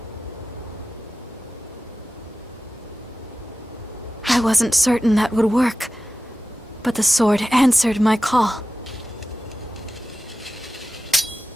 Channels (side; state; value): both; normal; correlation 0.93